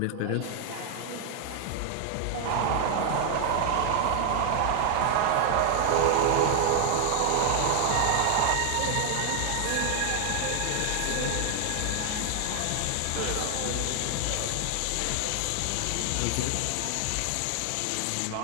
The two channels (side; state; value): both; different; correlation 0.00